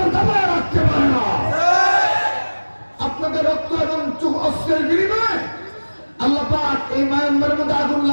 দাবায় রাখতে পারে না। আপনাদের রক্ত এবং অস্ত্রের বিনিময়ে আল্লাহ পাক এই মায়ানমারের মধ্যে আগুন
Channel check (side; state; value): both; inverted; correlation -1.00